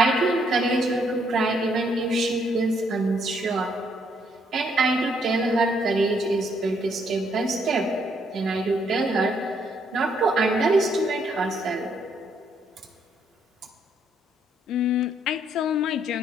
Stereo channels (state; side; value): normal; both; correlation 0.71